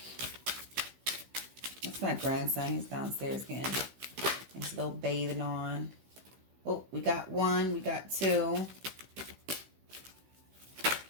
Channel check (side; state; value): left; late; 16 ms